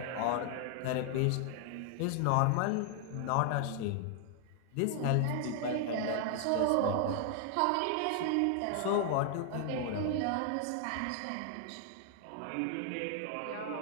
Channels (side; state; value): both; different; correlation 0.00